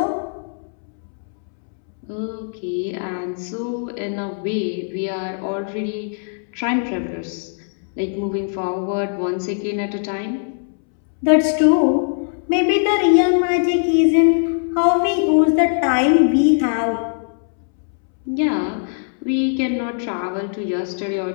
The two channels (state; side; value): silent; right; 65 dB below the other